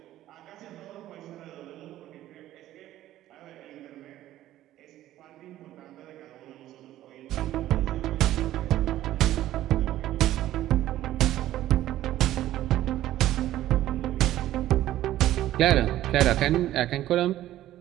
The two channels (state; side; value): quieter; left; 13.8 dB